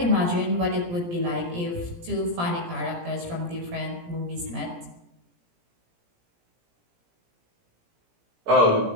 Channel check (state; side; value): late; left; 17 ms